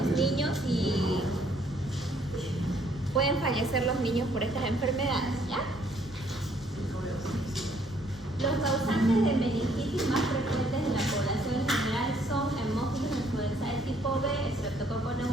niños y pueden fallecer los niños por estas enfermedades, ¿ya? Los causantes de meningitis más frecuentes en la población en general son hemófilos influenzae tipo B, Streptococcus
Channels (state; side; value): normal; both; correlation 0.65